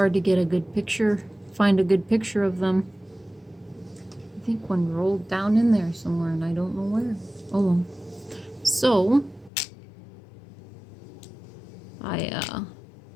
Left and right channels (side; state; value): right; drops out; at 9.5 s